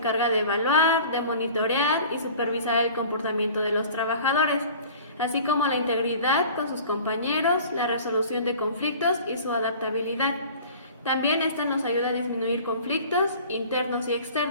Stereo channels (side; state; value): both; inverted; correlation -0.44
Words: de evaluar, de monitorear y supervisar el comportamiento de los trabajadores, así como la integridad con sus compañeros, la resolución de conflictos y su adaptabilidad. También esta nos ayuda a disminuir conflictos internos y